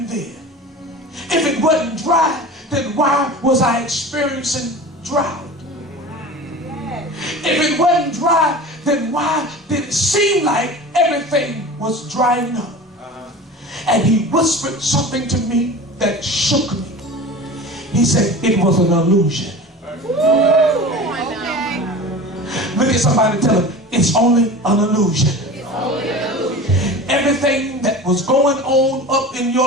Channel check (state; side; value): normal; both; correlation 0.35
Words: then? If it wasn't dry, then why was I experiencing drought? If it wasn't dry, then why did it seem like everything was drying up? And he whispered something to me that shook me. He said it was an illusion. Look at somebody and tell them, it's only an illusion. Everything that was going on up in